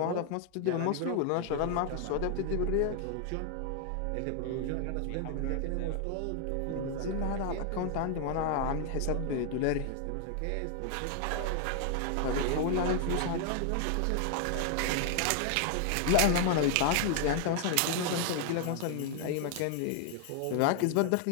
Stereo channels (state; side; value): different; both; correlation 0.00